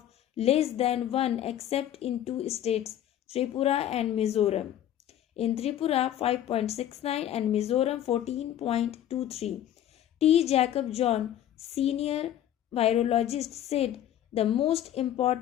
less than 1 except in two states, Tripura and Mizoram. In Tripura 5.69 and Mizoram 14.23. T. Jacob John, senior virologist, said the most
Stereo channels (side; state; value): right; quieter; 11.4 dB